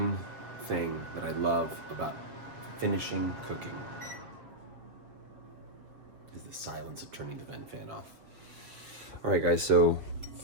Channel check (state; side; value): late; left; 7.9 ms